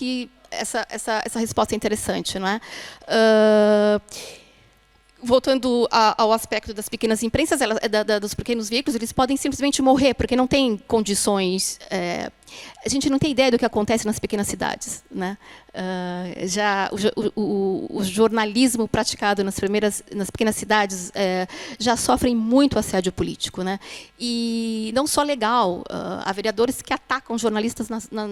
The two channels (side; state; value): both; identical; correlation 1.00